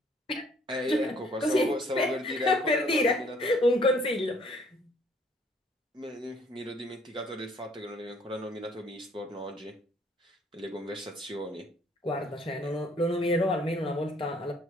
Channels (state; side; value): normal; both; correlation 0.61